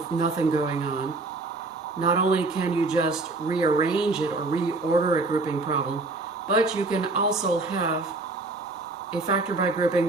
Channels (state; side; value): quieter; left; 3.4 dB